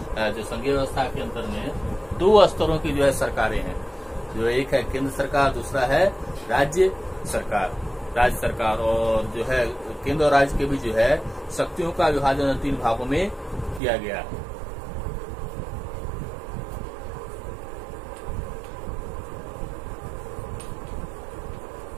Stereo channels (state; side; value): drops out; left; at 13.8 s